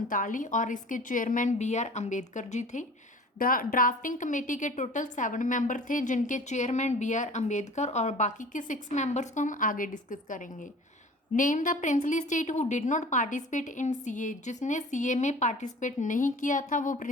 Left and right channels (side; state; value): both; normal; correlation 0.43